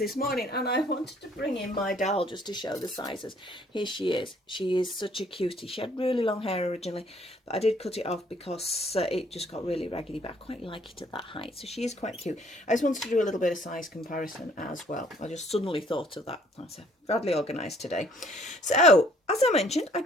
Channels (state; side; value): normal; both; correlation 0.61